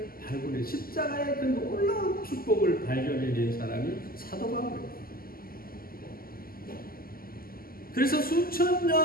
발굴해 십자가의 그 놀라운 축복을 발견해낸 사람이 사도 바울입니다. 그래서 수천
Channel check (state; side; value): late; right; 0.42 ms